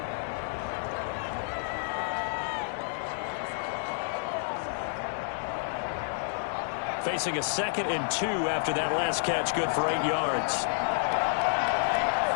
Facing a 2nd and 2 after that last catch, good for 8 yards.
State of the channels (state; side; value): silent; right; digital silence